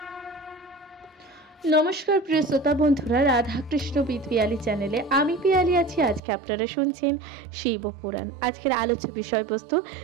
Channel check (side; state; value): left; drops out; at 6.2 s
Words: নমস্কার প্রিয় শ্রোতা বন্ধুরা, রাধাকৃষ্ণ উইথ পিয়ালি চ্যানেলে আমি পিয়ালি আছি। আজকে আপনারা শুনছেন শিব পুরাণ। আজকের আলোচ্য বিষয়বস্তু